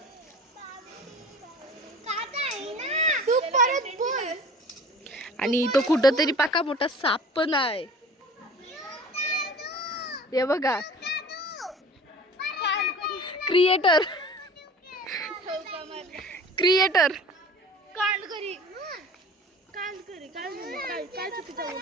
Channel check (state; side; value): normal; both; correlation 0.43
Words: आणि तो कुठं तरी पाका मोठा साप पण आहे. हे बघा क्रिएटर